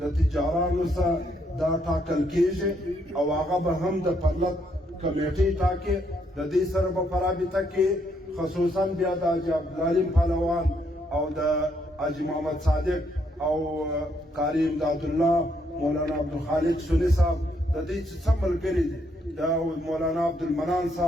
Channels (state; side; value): normal; both; correlation 0.73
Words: د تجارانو سره دا ټاکل کېږي او هغه به هم د پرلط کمیټې ټاکي. د دې سره به په رابطه کې خصوصا بیا د حاجي عبدالعلیم پهلوان او د حاجي محمد صادق او قاری امدادالله مولانا عبدالخالق سنی صاحب د دې چې څه ملګري دي د مولانا عبدالمنان